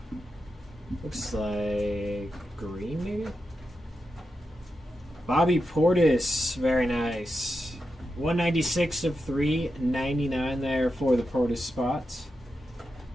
Looks like green, maybe? Bobby Portis, very nice. 196 of 399 there for the Portis spots.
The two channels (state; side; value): normal; both; correlation 0.88